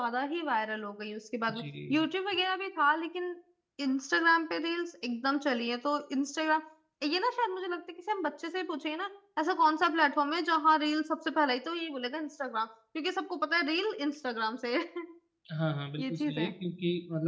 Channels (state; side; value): identical; both; correlation 1.00